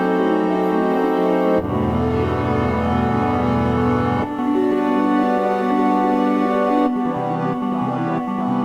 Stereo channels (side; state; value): both; identical; correlation 1.00